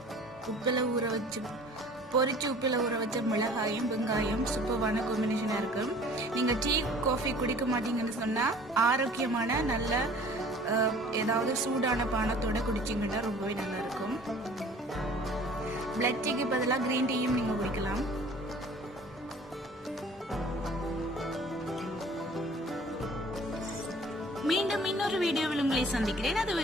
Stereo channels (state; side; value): normal; both; correlation 0.49